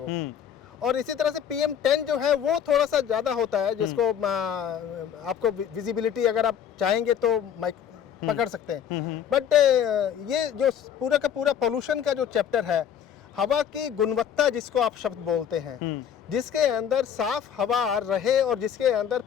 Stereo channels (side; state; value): right; quieter; 8.8 dB